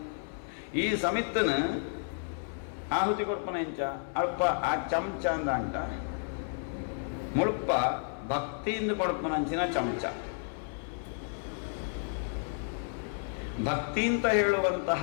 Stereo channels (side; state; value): right; silent; 57 dB below the other